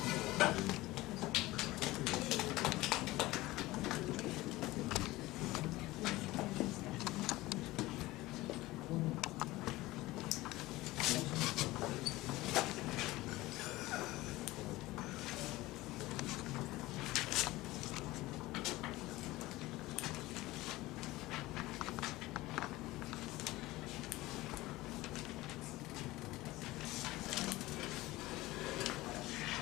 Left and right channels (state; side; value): quieter; right; 18.8 dB